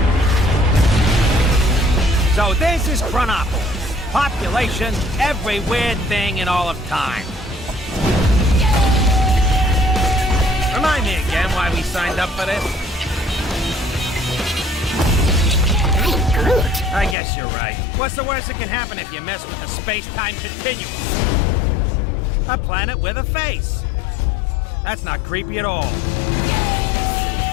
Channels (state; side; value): drops out; right; at 17.2 s